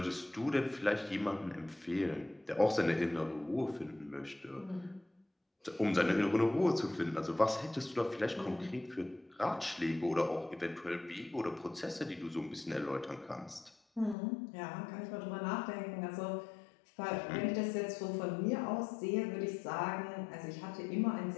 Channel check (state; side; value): drops out; right; at 14.2 s